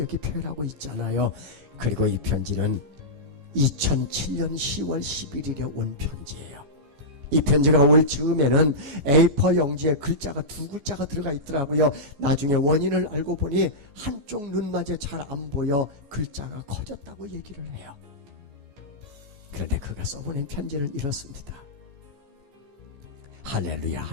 표현하고 있잖아요. 그리고 이 편지는 2007년 10월 11일에 온 편지예요. 이 편지가 올 즈음에는 A4 용지에 글자가 2글자가 들어가 있더라고요. 나중에 원인을 알고 보니 한쪽 눈마저 잘 안 보여 글자가 커졌다고 얘기를 해요. 그런데 그가 써보낸 편지는 이렇습니다. 할렐루야,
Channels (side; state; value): left; late; 14 ms